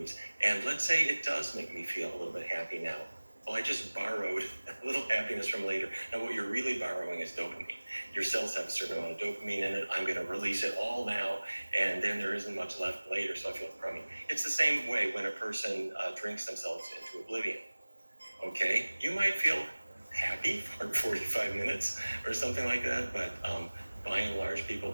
and let's say it does make me feel a little bit happy now. Well, I just borrowed a little happiness from later. Now, what you're really borrowing is dopamine. Your cells have a certain amount of dopamine in it. I'm going to release it all now, and then there isn't much left later, so I feel crummy. It's the same way when a person drinks themselves into oblivion. Okay, you might feel happy for 45 minutes or something like that, but by and large, people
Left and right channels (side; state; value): both; inverted; correlation -1.00